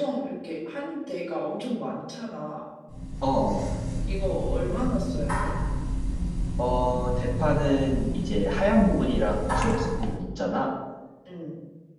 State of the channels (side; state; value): both; identical; correlation 1.00